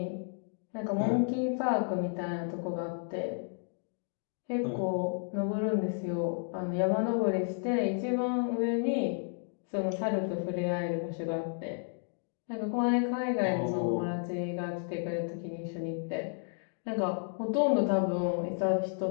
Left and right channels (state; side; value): silent; right; 56 dB below the other